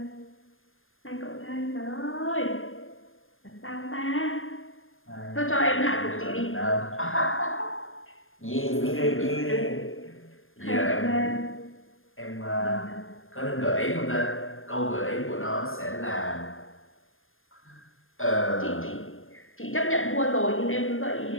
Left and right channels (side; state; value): right; late; 0.60 ms